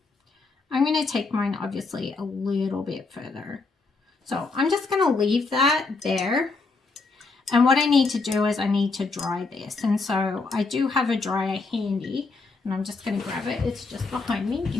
I'm going to take mine obviously a little bit further. So I'm just going to leave that there. And what I need to do is I need to dry this. And so I do have a dryer handy, and I'm just going to grab it. It's just behind me.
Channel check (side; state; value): right; quieter; 3.9 dB